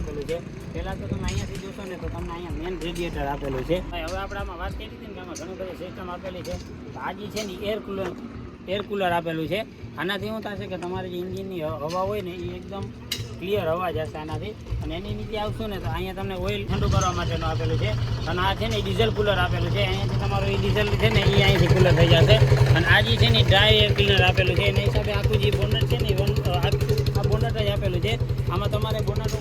છે. પહેલાં તો તમે અહીંયાથી જોશો ને તો તમને અહીંયા મેન રેડિએટર આપેલું છે. હવે આપણે આમાં વાત કરી હતી ને કે આમાં ઘણી બધી સિસ્ટમ આપેલી છે. તો આ જે છે ને એર કુલર આપેલું છે. આનાથી શું થશે કે તમારે જે એન્જિનની હવા હોય ને એ એકદમ ક્લિયર હવા જશે આનાથી. અને એની નીચે આવશું ને તો અહીંયા તમને ઓઇલ ઠંડુ કરવા માટેનું આપેલું છે. અને આ છે ને ડીઝલ કુલર આપેલું છે. અહીંયાથી તમારું એ ડીઝલ છે ને એ અહીંથી કુલર થઈ જશે. અને આ જે છે ને ડ્રાય એર ક્લીનર આપેલું છે. એના હિસાબે આખું જે બોનટ છે ને આ બોનટ જ આપેલું છે. આમાં તમારે બોનટ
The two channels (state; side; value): identical; both; correlation 1.00